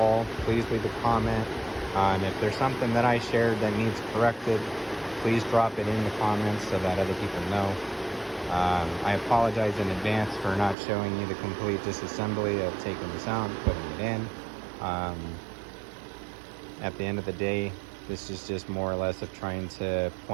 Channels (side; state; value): left; drops out; at 10.8 s